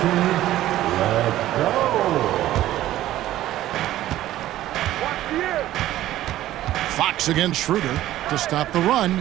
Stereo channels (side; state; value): left; quieter; 14.2 dB